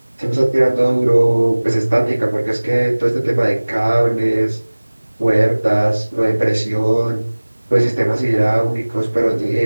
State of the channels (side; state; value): both; inverted; correlation -1.00